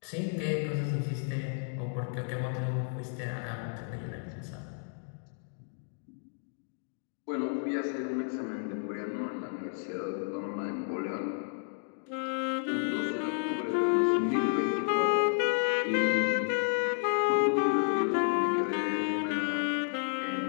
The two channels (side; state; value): right; silent; 57 dB below the other